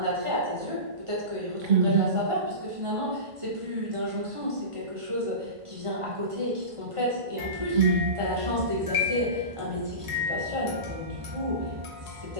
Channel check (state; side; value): late; left; 1.5 ms